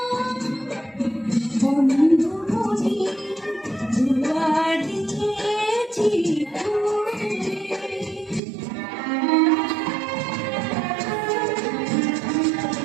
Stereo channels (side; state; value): left; drops out; at 8.4 s